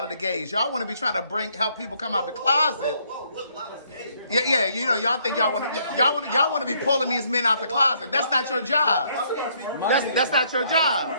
of the gays. Y'all want to be trying to help people come out the closet. Yeah. You know, y'all think y'all want to be pulling these men out the closet. That's not your job. That's not your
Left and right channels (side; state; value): both; inverted; correlation -0.67